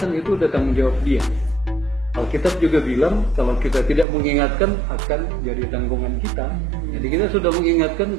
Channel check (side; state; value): left; drops out; at 4.0 s